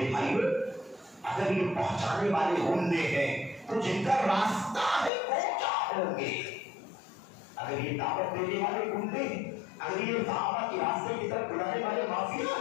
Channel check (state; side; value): drops out; right; at 5.1 s